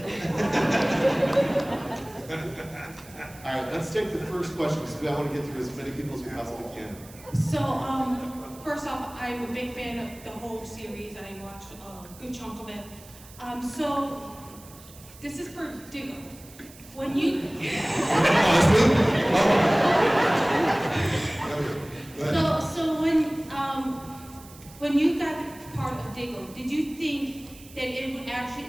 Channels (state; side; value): noise; right; hiss, 21 dB below the sound